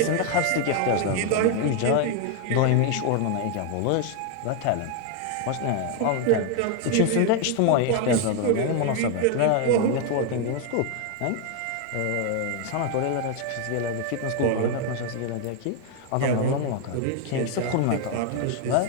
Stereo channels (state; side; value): different; both; correlation 0.01